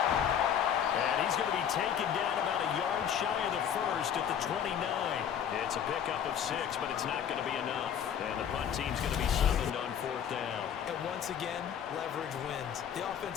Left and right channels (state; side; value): quieter; right; 8.7 dB